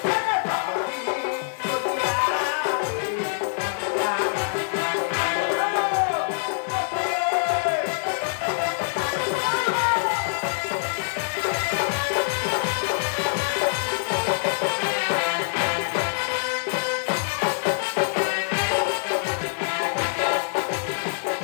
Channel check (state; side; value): silent; right; digital silence